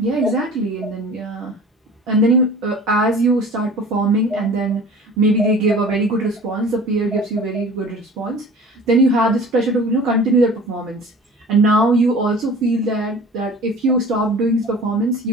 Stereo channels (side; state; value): both; normal; correlation 0.43